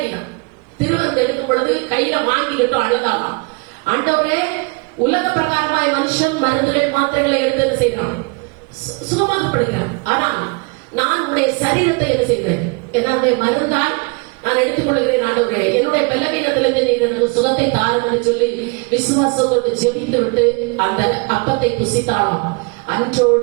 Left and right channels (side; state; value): left; quieter; 31.2 dB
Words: திருவிருந்து எடுக்கும் பொழுது கையில வாங்கிக்கிட்டோம், அழுதாலாம். ஆண்டவரே, உலக பிரகாரமாய் மனுஷன் மருந்துகள் மாத்திரைகளை எடுத்து என்ன செய்யறான்? சுகமாகப்படுகிறான். ஆனால் நான் உடைய சரீரத்தை என்ன செய்கிறேன்? என்னுடைய மருந்தால் நான் எடுத்துக்கொள்கிறேன். ஆண்டவரே, என்னுடைய பலவீனத்திலிருந்து நீர் எனக்கு சுகத்தை தாருன்னு சொல்லி விசுவாசத்தோடு ஜெபித்து விட்டு அந்த அப்பத்தை புசித்தாலாம்.